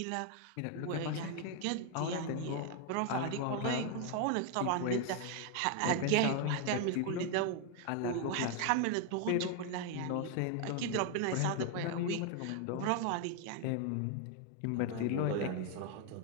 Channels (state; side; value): different; both; correlation 0.01